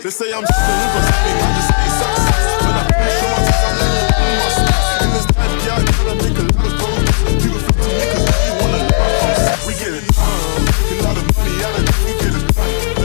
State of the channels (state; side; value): silent; right; digital silence